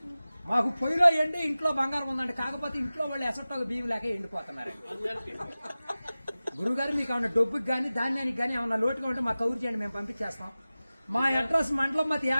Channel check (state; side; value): inverted; both; correlation -0.97